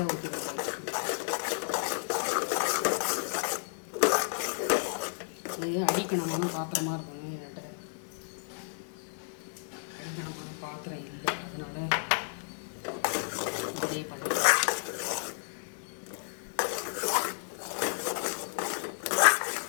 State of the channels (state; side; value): silent; right; digital silence